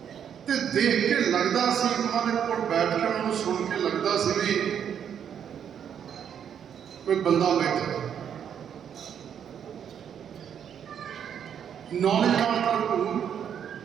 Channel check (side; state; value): left; quieter; 8.5 dB